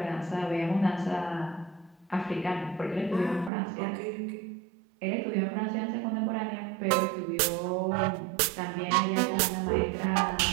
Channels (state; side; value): drops out; left; at 3.5 s